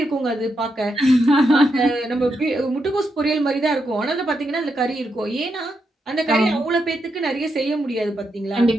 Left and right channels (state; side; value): normal; both; correlation 0.83